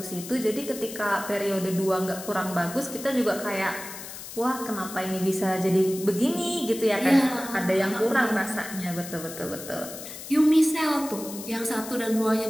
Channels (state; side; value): noise; left; hiss, 11 dB below the sound